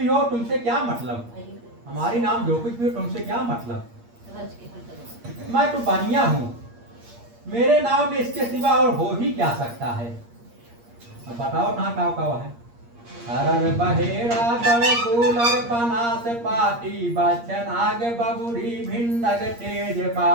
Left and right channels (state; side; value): late; left; 8.5 ms